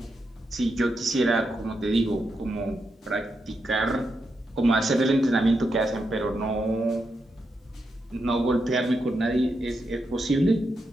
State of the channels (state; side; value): normal; both; correlation 0.84